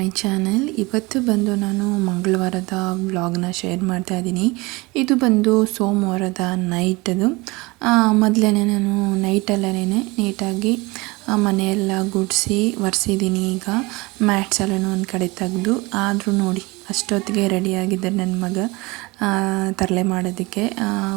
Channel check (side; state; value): left; quieter; 23.9 dB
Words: channel. ಇವತ್ತು ಬಂದು ನಾನು ಮಂಗಳವಾರದ ವ್ಲಾಗ್ನ ಶೇರ್ ಮಾಡ್ತಾ ಇದ್ದೀನಿ. ಇದು ಬಂದು ಸೋಮವಾರದ ನೈಟದು. ಮೊದಲೇ ನಾನು ನೈಟಲ್ಲೇ ನೀಟಾಗಿ ಮನೆಯೆಲ್ಲ ಗುಡಿಸಿ ಒರೆಸಿದ್ದೀನಿ. ಈಗ ಮ್ಯಾಟ್ಸ್ ಎಲ್ಲನೂ ಒಂದು ಕಡೆ ತೆಗೆದು, ಆದರೂ ನೋಡಿ ಅಷ್ಟೊತ್ತಿಗೆ ರೆಡಿಯಾಗಿದ್ದೆ ನನ್ನ ಮಗ ತರಲೆ ಮಾಡೋದಕ್ಕೆ.